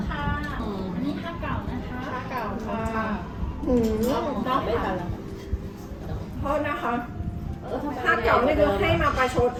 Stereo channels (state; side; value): identical; both; correlation 1.00